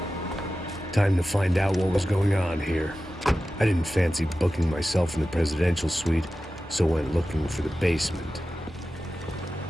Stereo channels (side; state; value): both; normal; correlation 0.94